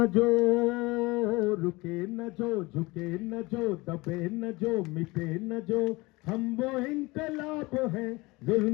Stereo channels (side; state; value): right; quieter; 22.9 dB